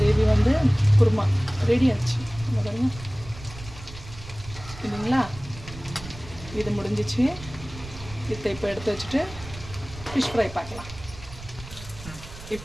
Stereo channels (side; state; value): right; noise; rumble, 15 dB below the sound